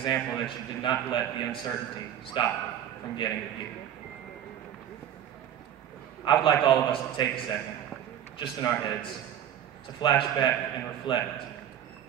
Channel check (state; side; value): quieter; left; 10.3 dB